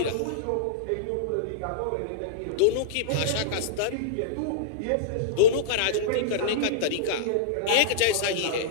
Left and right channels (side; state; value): both; different; correlation -0.03